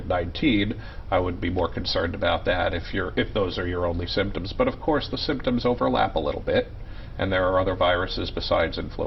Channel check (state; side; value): identical; both; correlation 1.00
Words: I would be more concerned about that if those are your only symptoms. But of course, the symptoms overlap a little bit. And there are other viruses besides